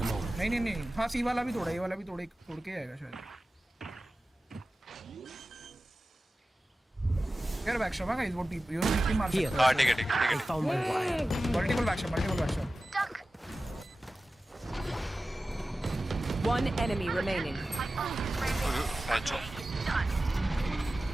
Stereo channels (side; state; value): both; normal; correlation 0.95